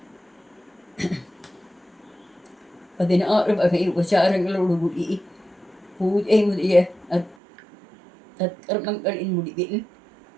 16 வகை உபசாரங்களோடு கூடி பூஜை முதலிய தற்கர்மங்களின் முடிவில்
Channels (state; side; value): drops out; left; at 7.4 s